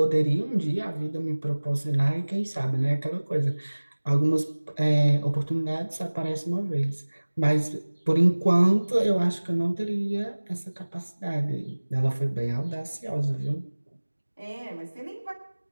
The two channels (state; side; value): inverted; both; correlation -1.00